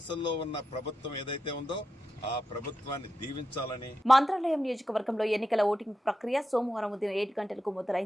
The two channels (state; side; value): normal; both; correlation 0.88